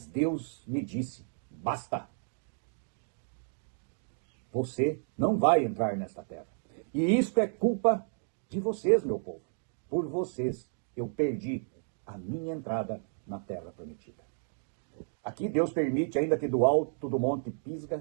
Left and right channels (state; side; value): silent; left; digital silence